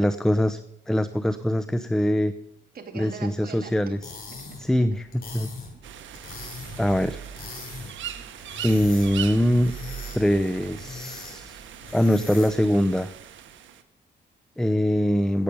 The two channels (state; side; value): normal; both; correlation 0.94